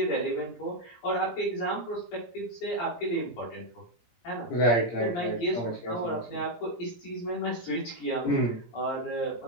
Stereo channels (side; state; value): right; late; 17 ms